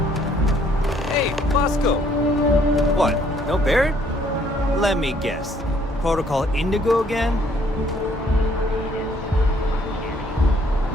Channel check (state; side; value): normal; both; correlation 0.64